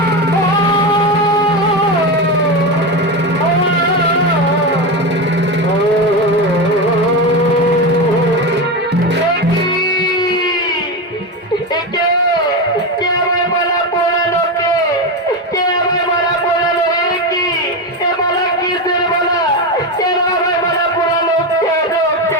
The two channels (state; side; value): normal; both; correlation 0.16